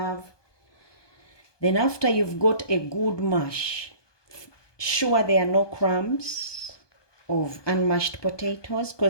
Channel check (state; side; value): late; right; 1.2 ms